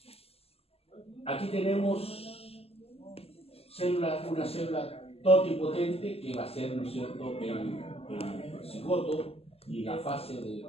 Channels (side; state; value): right; late; 0.29 ms